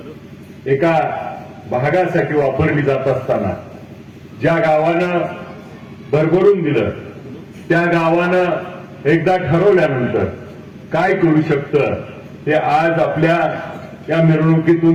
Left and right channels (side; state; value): both; identical; correlation 1.00